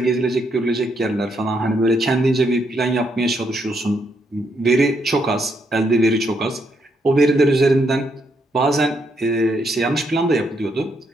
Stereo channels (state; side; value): normal; both; correlation 0.76